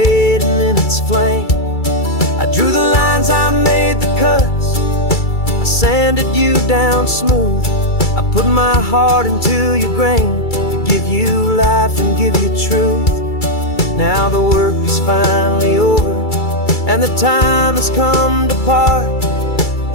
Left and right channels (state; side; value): late; right; 2.3 ms